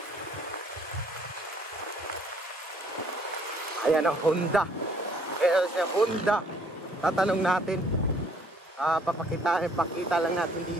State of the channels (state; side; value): normal; both; correlation 0.62